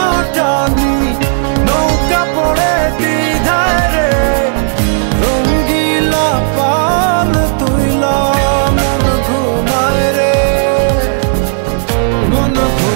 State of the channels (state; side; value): silent; left; digital silence